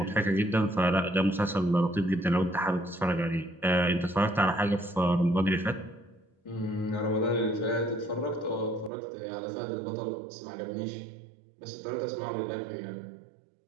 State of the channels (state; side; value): drops out; left; at 8.9 s